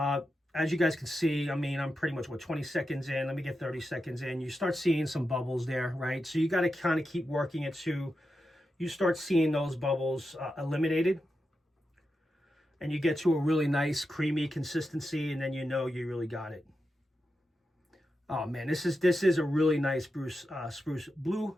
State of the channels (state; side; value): normal; both; correlation 0.89